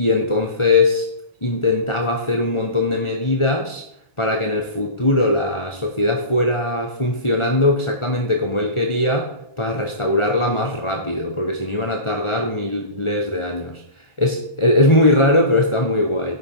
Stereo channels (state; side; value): late; right; 1.4 ms